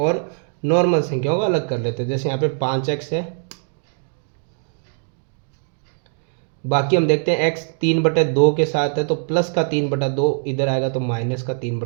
नॉर्मल संख्याओं को अलग कर लेते हैं। जैसे यहाँ पे 5x है, बाकी हम देखते हैं x 3/2 के साथ है तो प्लस का 3/2 इधर आएगा तो माइनस का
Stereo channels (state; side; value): silent; left; 65 dB below the other